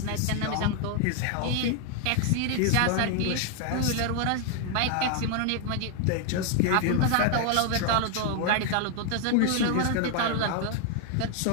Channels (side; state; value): both; different; correlation 0.00